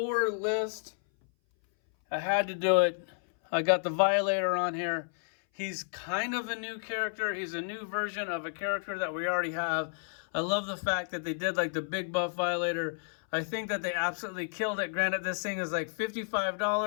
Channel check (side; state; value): right; silent; 57 dB below the other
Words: list. I had to do it. I got the Violator on here. He's kind of a new character. He's a new version of a character that we already have. I love the fact that they did like the big buff Violator. I think that they absolutely killed it. Granted, this thing is like